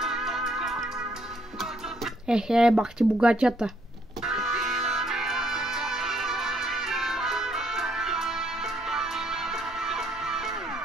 Ехе, бах ти богатята.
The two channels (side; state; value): both; normal; correlation 0.69